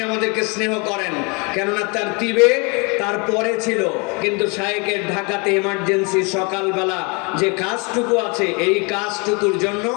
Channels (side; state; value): right; quieter; 31.3 dB